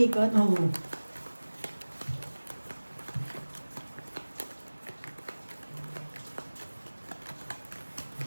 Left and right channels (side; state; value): both; inverted; correlation -1.00